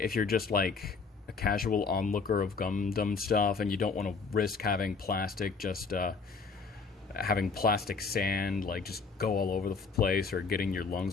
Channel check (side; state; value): right; quieter; 4.8 dB